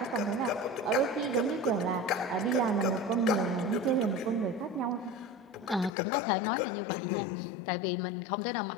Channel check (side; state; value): right; drops out; at 5.9 s